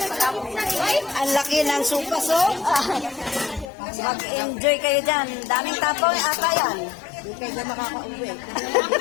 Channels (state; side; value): drops out; right; at 3.7 s